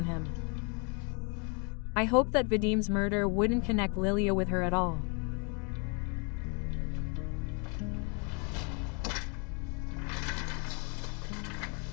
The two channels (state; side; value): quieter; right; 35.4 dB